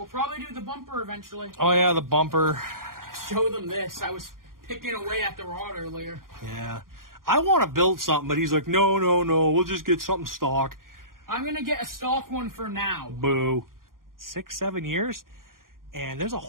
probably do the bumper eventually. Oh, yeah, the bumper. Show them this. I was picking away at the rod earlier. Yeah. I want to build something, but he's like, no, we'll just get something stock. I'm going to get a stock one for now. Boo. 6-7 years, and there's a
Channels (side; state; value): left; late; 0.91 ms